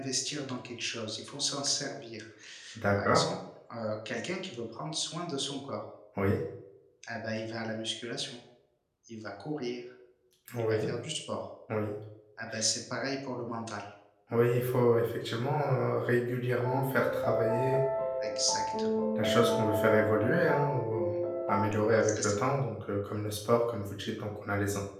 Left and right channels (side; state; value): both; identical; correlation 1.00